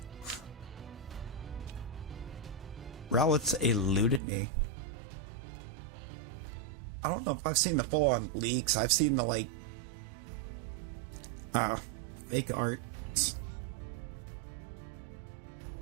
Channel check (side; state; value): left; drops out; at 4.2 s